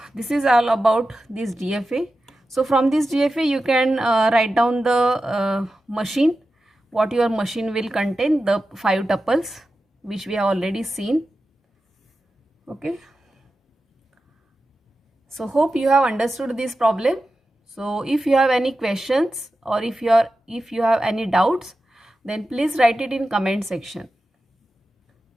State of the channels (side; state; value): both; normal; correlation 0.92